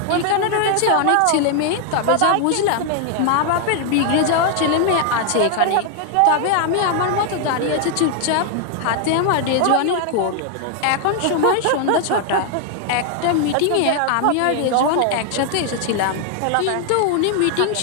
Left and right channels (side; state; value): both; different; correlation 0.00